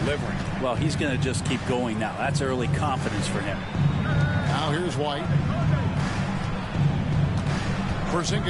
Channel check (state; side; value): identical; both; correlation 1.00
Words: Well, he's going to just keep going now. That's early confidence for him. Now here's White.